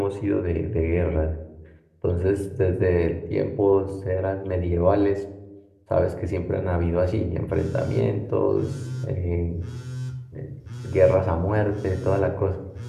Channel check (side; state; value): both; identical; correlation 1.00